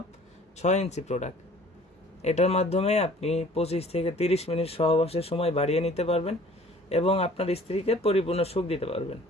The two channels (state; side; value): normal; both; correlation 0.51